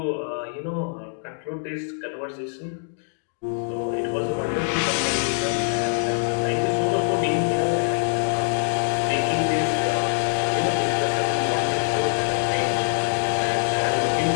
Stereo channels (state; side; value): silent; right; 57 dB below the other